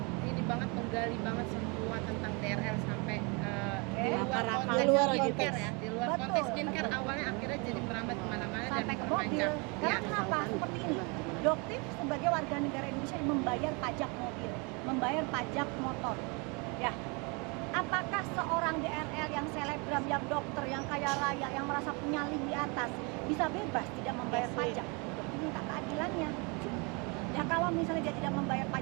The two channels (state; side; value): quieter; left; 31.0 dB